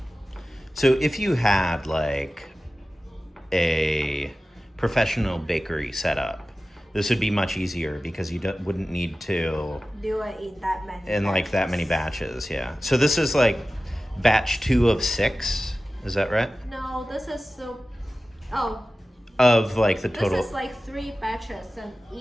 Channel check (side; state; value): both; normal; correlation 0.95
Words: So if you had like a professional bakery setup, this would be much easier because you wouldn't need to Do it in that many like that many batches. Yeah. So this is like batch 2 of 6. Is that right? No, this is Of like the total. This is like 3 batches, and